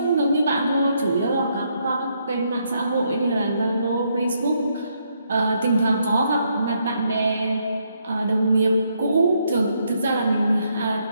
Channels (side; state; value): both; inverted; correlation -0.75